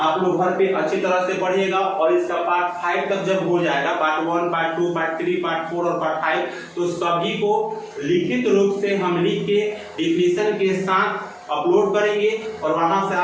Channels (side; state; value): both; identical; correlation 1.00